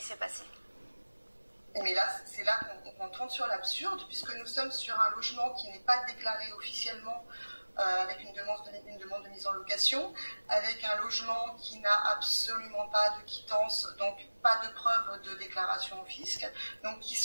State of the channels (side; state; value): both; inverted; correlation -1.00